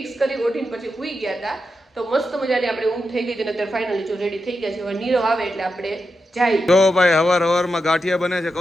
કરી ઓઢીને પછી સૂઈ ગયા હતા. તો મસ્ત મજાની આપણે ઊંઘ થઈ ગઈ છે અને અત્યારે ફાઇનલી જો રેડી થઈ ગયા છે. હવે નીરવ આવે એટલે આપણે જાય. જો ભાઈ હવાર ગાંઠિયા બને છે.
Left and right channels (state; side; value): normal; both; correlation 0.87